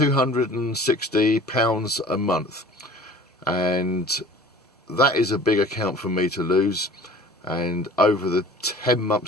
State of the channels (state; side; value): normal; both; correlation 0.45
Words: a month, and that is a big account for me to lose. And over the 10